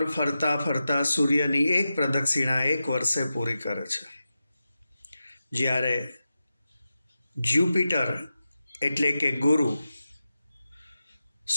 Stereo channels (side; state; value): both; inverted; correlation -0.91